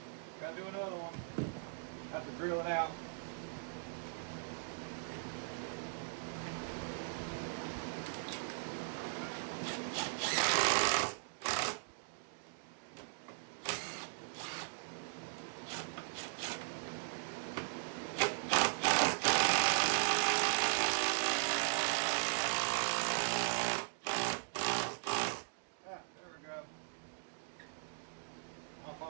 Gotta do another one. Have to drill it out.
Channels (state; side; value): silent; left; digital silence